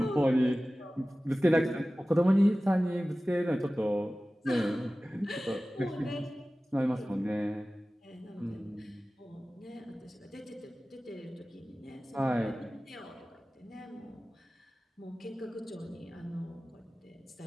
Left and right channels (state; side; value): normal; both; correlation 0.97